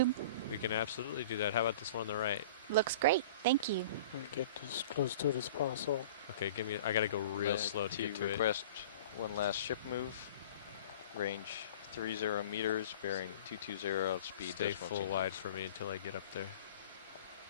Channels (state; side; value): inverted; both; correlation -0.43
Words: We can absolutely do that. How about this one on the right? looks great. Thank you. We'll get as close to it as possible. Okay, give me. I gotta go real slow to get to it. Request one last ship move. Range 30 meters, bearing 220, speed Stay decimal full 2. wide for me until I get up there.